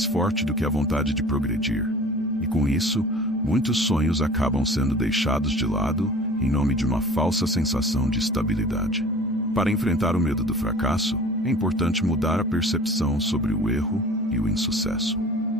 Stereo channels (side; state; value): both; normal; correlation 0.44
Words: forte do que a vontade de progredir, e com isso, muitos sonhos acabam sendo deixados de lado em nome de uma falsa sensação de estabilidade. Para enfrentar o medo do fracasso, é importante mudar a percepção sobre o erro e o insucesso.